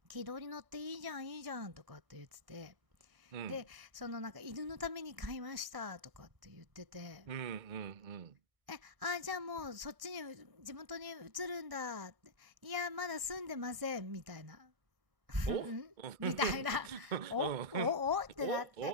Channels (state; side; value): late; left; 1.6 ms